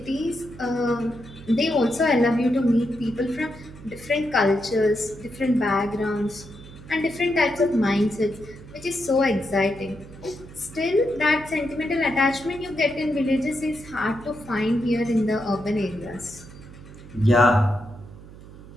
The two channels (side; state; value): right; noise; hum, 18 dB below the sound